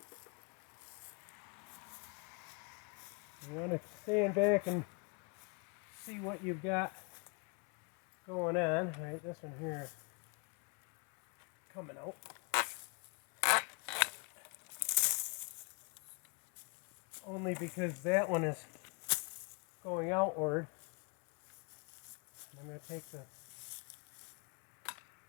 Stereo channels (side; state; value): right; quieter; 35.2 dB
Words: You want to stand back and see what you've got going on. Right, this one here is coming out. Only because that one is going outward. I'm going to take the